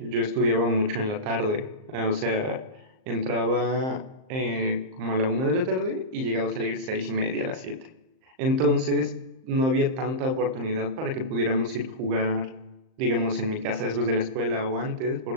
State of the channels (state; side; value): late; left; 38 ms